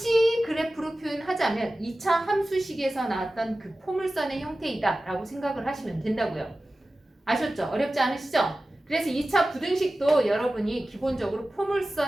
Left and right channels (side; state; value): both; normal; correlation 0.96